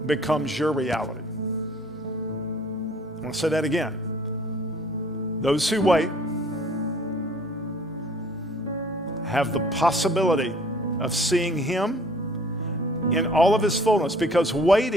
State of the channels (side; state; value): both; normal; correlation 0.55